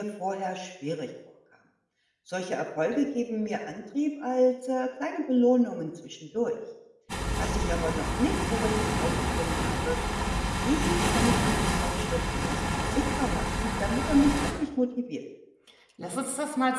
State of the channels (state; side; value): identical; both; correlation 1.00